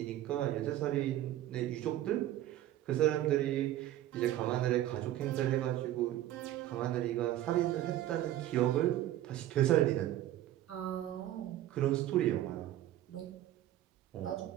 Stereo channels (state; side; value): quieter; left; 13.4 dB